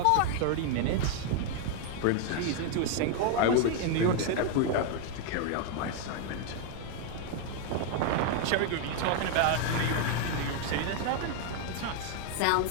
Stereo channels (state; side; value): different; both; correlation 0.00